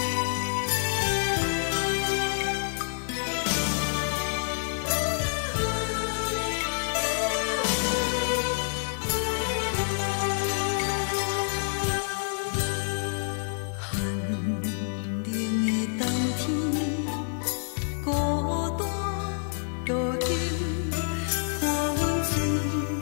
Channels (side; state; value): right; silent; digital silence